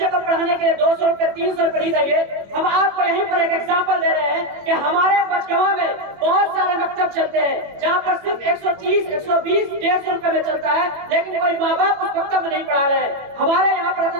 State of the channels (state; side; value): late; left; 21 ms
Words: को पढ़ाने के लिए 200 रुपए 300 रुपए नहीं देंगे। हम आपको यहीं पर एक एग्जांपल दे रहे हैं कि हमारे मचगवा में बहुत सारे मकतब चलते हैं जहाँ पर सिर्फ 130, 120, 150 रुपए में चलता है, लेकिन कोई माँ बाप उस मकतब में नहीं पढ़ा रहे हैं। हमारे यहाँ पर